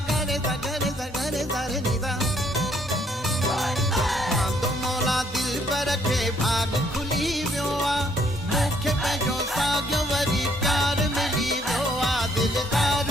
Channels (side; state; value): both; normal; correlation 0.67